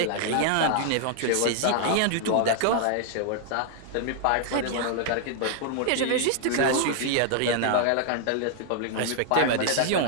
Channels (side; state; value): both; different; correlation 0.00